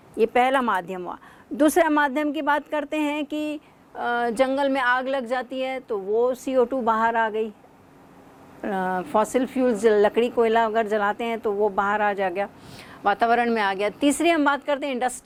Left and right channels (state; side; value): identical; both; correlation 1.00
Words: ये पहला माध्यम हुआ। दूसरा माध्यम की बात करते हैं कि जंगल में आग लग जाती है तो वो CO2 बाहर आ गई। फॉसिल फ्यूल्स लकड़ी कोयला अगर जलाते हैं तो वो बाहर आ जा गया, वातावरण में आ गया। तीसरी हम बात करते हैं